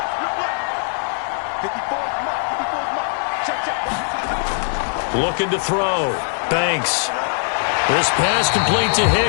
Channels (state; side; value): silent; right; 65 dB below the other